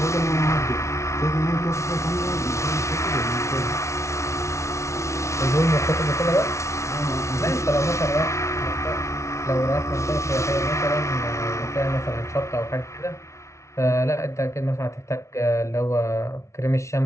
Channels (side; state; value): right; late; 0.14 ms